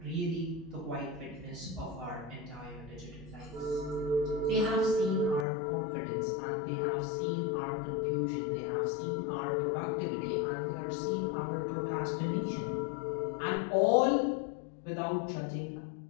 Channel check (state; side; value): drops out; right; at 5.5 s